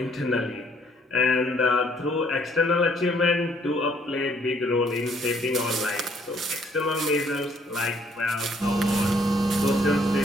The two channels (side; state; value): both; normal; correlation 0.64